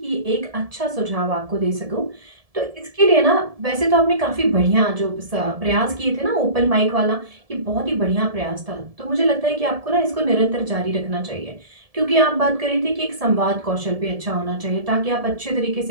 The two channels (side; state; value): left; late; 1.7 ms